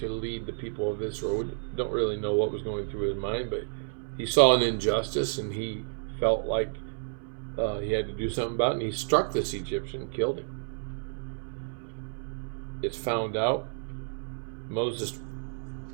lead the people of Israel. We don't really know what was going through his mind, but he saw an injustice and he felt like he had to do something about it, and he struck this Egyptian and killed him. It's found out. Moses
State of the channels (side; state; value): left; silent; 58 dB below the other